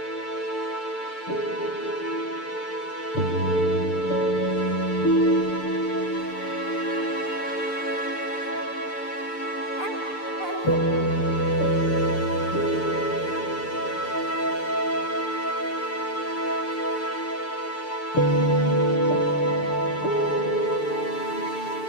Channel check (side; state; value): right; late; 6.8 ms